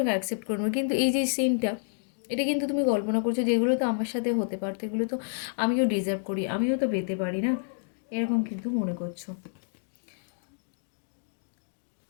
অ্যাকসেপ্ট করবো। কিন্তু এই যে সিনটা, এটা কিন্তু তুমি কল্পনা করছো যে এগুলো তো আমার সাথে হতে পারতো, এগুলো তো আমিও ডিজার্ভ করি, আমিও তো পেতে পারি না, এরকম কিন্তু মনে করছো।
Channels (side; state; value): right; silent; digital silence